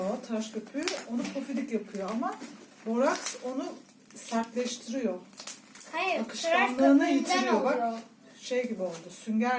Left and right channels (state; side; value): identical; both; correlation 1.00